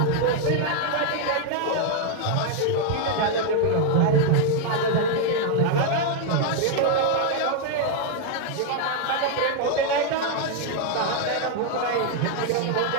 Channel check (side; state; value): both; different; correlation 0.00